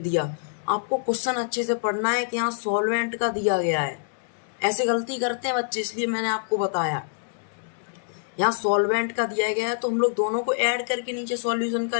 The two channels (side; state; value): right; silent; 61 dB below the other